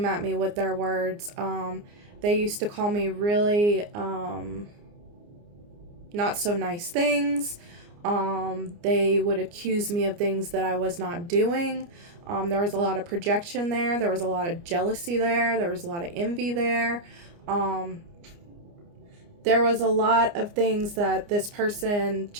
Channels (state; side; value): late; left; 29 ms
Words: at me with their words. They used to call me really not so nice things. They would accuse me of things that I was not doing. There was a lot of projection there. There was a lot of jealousy there. There was a lot of envy there. There was a lot of things that this person